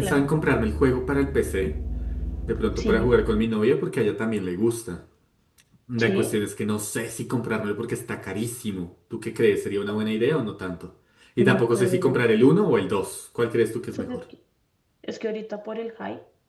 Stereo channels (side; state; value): both; identical; correlation 1.00